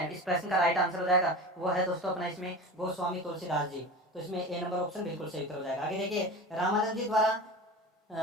इस प्रश्न का राइट आंसर हो जाएगा वो है दोस्तों अपना इसमें गोस्वामी तुलसीदास जी। तो इसमें ए नंबर ऑप्शन बिल्कुल सही उत्तर हो जाएगा। आगे देखिए, रामानंद जी द्वारा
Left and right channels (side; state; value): both; normal; correlation 0.32